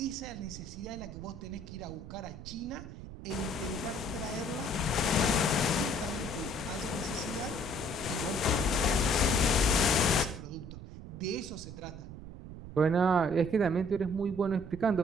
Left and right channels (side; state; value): right; noise; rumble, 12 dB below the sound